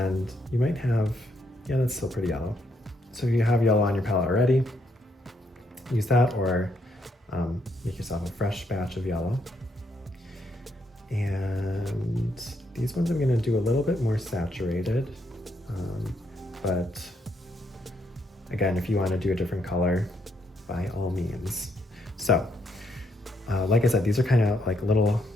you might have, yeah, that's still pretty yellow. So if you have yellow on your palette already, use that, or make yourself a fresh batch of yellow. And these ones I'm gonna do a little bit more saturated, but again, if you wanna do a different color, by all means. So, like I said, these are kind of like little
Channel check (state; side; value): normal; both; correlation 0.75